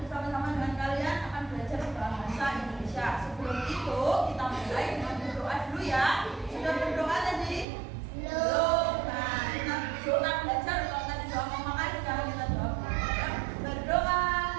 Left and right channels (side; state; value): left; drops out; at 7.7 s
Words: dengan kalian akan belajar bahasa Indonesia. Sebelum itu kita mulai dengan berdoa dulu ya. Sudah berdoa tadi? Belum. Nah, kita doa belajar. Kalau tadi doa memakai, sekarang kita doa belajar. Berdoa